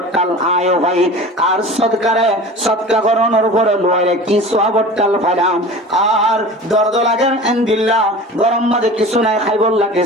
আয় ভাই আর সদকা করানোর উপরে লয়ে কি সওয়াবটাল ফালাম আর দর্দ লাগে এন্দিল্লাহ গরম মাঝে কিছু নাই খাইবল লাগে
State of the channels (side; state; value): both; normal; correlation 0.38